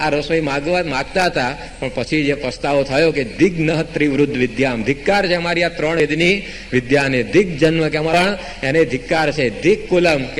રસોઈ માગતા હતા. પણ પછી જે પસ્તાવો થયો કે દિગ્ન ત્રિવૃદ્ધ વિદ્યામ, ધિક્કાર છે અમારી આ ત્રણ વેદની વિદ્યાને. દિગ જન્મ કે અમારા એને ધિક્કાર છે. દિક કુલમ કે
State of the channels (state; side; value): identical; both; correlation 1.00